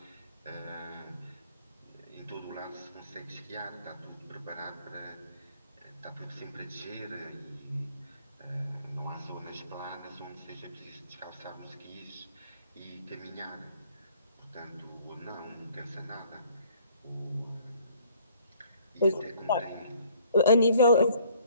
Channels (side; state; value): both; inverted; correlation -0.60